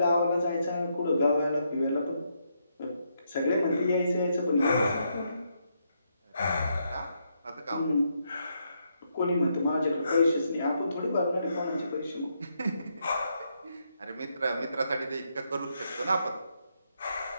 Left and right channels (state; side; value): inverted; both; correlation -0.78